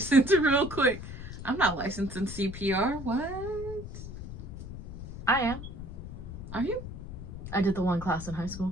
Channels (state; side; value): noise; left; rumble, 10 dB below the sound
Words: real quick. I'm not licensed in CPR. What? I am. Are you? I did the one class in high